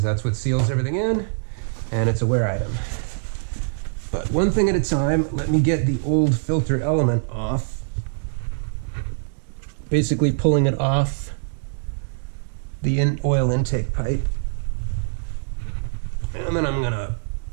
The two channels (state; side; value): silent; left; 63 dB below the other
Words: that's what seals everything in, and it's a wear item. But one thing at a time, let me get the old filter element off. Basically pulling it off the oil intake pipe. And then I'm gonna